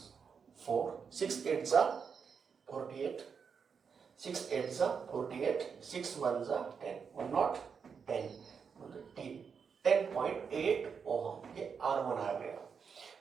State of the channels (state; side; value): quieter; left; 6.2 dB